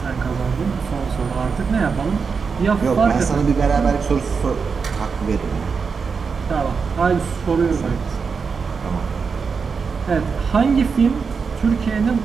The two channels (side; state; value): left; quieter; 5.4 dB